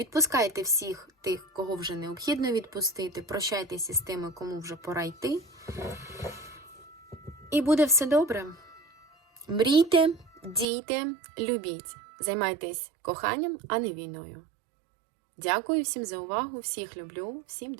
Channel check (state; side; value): drops out; left; at 10.7 s